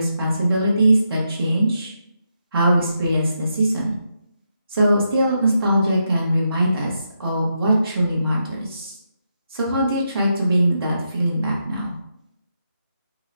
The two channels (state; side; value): inverted; both; correlation -0.83